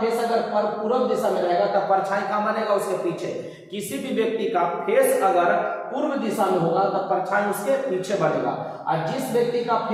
अगर पूरब दिशा में रहेगा तो परछाई कहाँ बनेगा? उसके पीछे। किसी भी व्यक्ति का फेस अगर पूर्व दिशा में होगा तो परछाई उसके पीछे बनेगा। और जिस व्यक्ति का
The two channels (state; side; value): identical; both; correlation 1.00